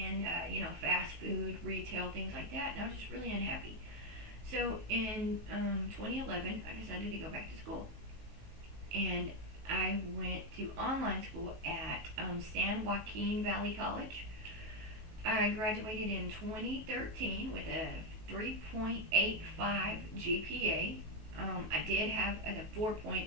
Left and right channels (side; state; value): left; late; 19 ms